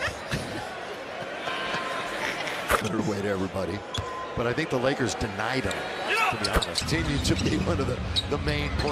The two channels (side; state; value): both; identical; correlation 1.00